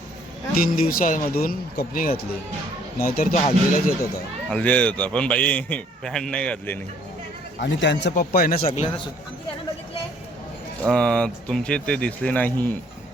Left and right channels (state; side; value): normal; both; correlation 0.61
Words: 3 दिवसामधून कपनी घातली, नाहीतर तो हल्दीलाच येत होता. हल्दी येत होता, पण बाई पॅन्ट नाही घातली नाही. आणि त्यांचा पप्पा आहे ना सगळ्यांना तुमचे ते दिसले नाही.